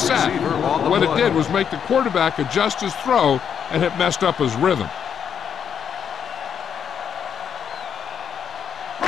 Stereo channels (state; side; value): quieter; right; 7.9 dB